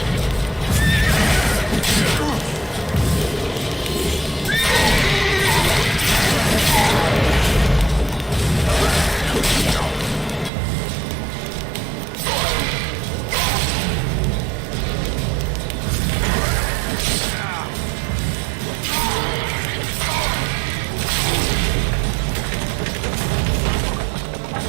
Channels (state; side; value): drops out; left; at 10.5 s